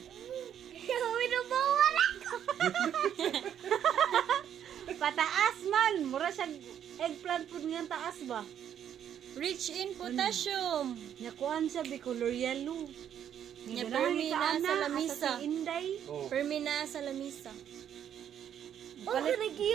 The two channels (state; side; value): quieter; left; 9.5 dB